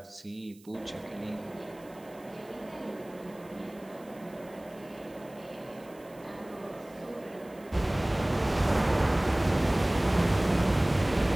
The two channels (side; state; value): right; noise; hiss, 26 dB below the sound